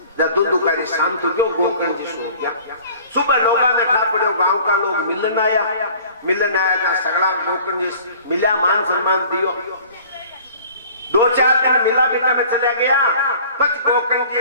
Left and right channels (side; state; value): both; inverted; correlation -0.48